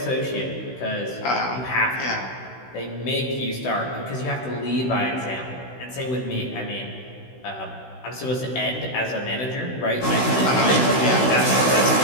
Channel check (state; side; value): late; right; 16 ms